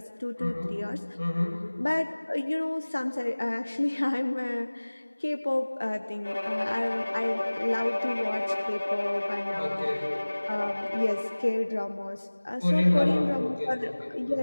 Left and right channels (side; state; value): both; inverted; correlation -1.00